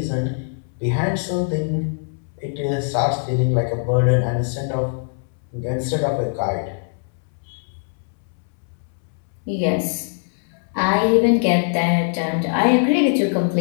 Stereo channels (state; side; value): silent; right; 64 dB below the other